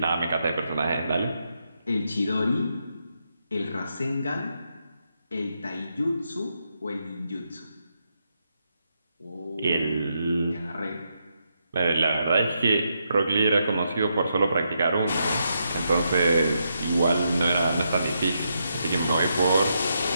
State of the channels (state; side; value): inverted; both; correlation -0.81